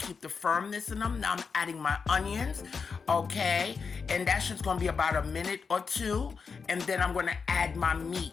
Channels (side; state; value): right; quieter; 5.4 dB